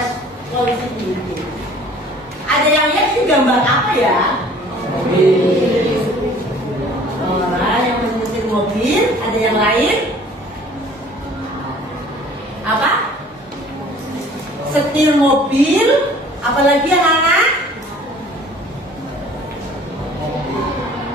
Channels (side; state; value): both; normal; correlation 0.51